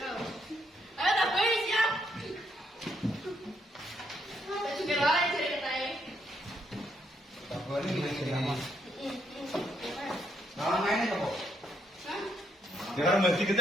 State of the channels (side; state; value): both; normal; correlation 0.74